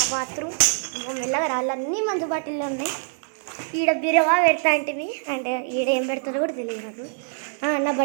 బాత్రూమ్. మెల్లగా రాళ్ళన్నీ మందు బాటిల్లో ఉన్నాయి. ఈడ బిరవా పెడతా అంటివి. అంటే ఈడ ఏం పెడతారో కూడా తెలియదు నాకు. నా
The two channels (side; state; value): left; silent; digital silence